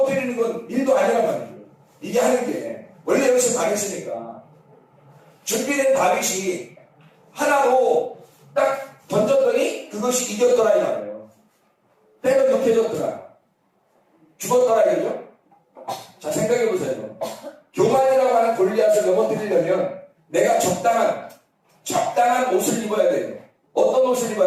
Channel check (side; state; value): both; identical; correlation 1.00